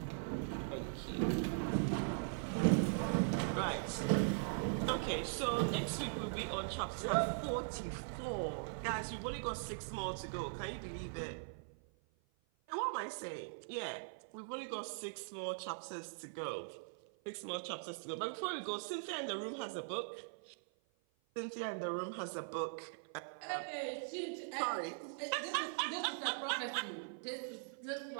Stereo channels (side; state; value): left; silent; 50 dB below the other